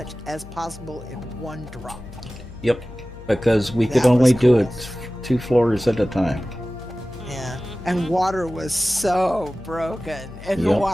as possible in one drop. Yep, because we could That only was do cool. it 2 floors at a time. Yeah, Mhm. and water was so broken, and the Yep.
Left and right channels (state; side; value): noise; left; hum, 16 dB below the sound